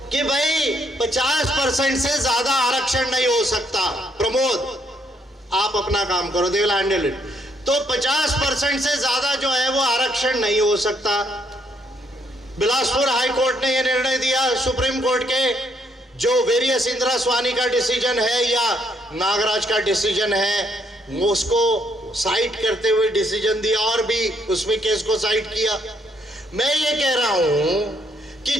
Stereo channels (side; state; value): both; normal; correlation 0.71